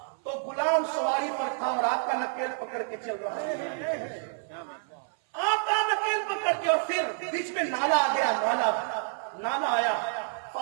تو غلام سواری پر تھا اور آپ کا نکیل پکڑ کے چل رہا ہے، آپ کا نکیل پکڑ کے، اور پھر بیچ میں نالا آ گیا، نالا آیا۔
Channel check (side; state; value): left; silent; 59 dB below the other